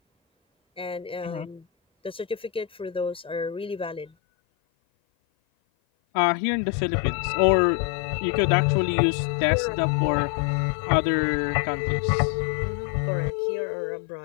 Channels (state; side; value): drops out; right; at 4.1 s